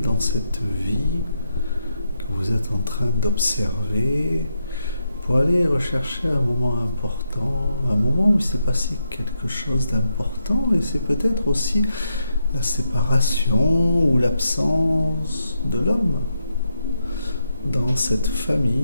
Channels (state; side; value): inverted; both; correlation -0.82